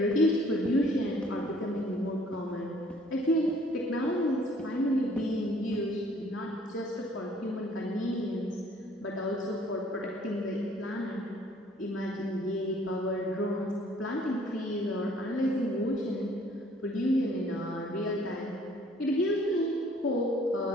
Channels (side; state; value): both; normal; correlation 0.58